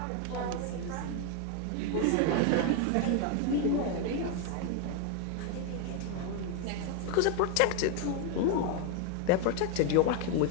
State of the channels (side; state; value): both; different; correlation 0.01